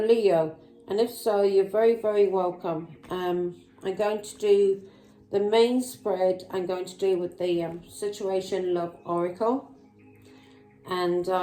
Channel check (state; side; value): identical; both; correlation 1.00